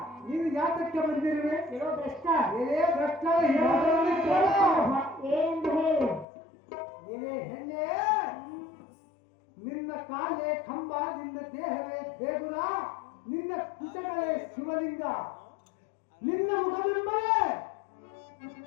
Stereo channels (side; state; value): right; drops out; at 6.2 s